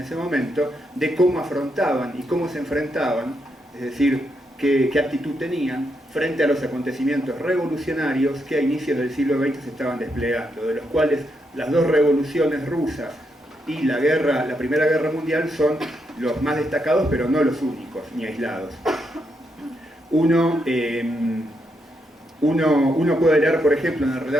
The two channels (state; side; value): normal; both; correlation 0.80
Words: momento, de cómo afrontaban y cómo se enfrentaban, es decir, qué actitud tenían frente a los acontecimientos revolucionarios que a inicios del siglo XX se estaban desplegando, de los cuales las dos revoluciones rusas y la Primera Guerra Mundial son los más destacados, pero no los únicos, ni aislados. Uno puede leer, por ejemplo, en el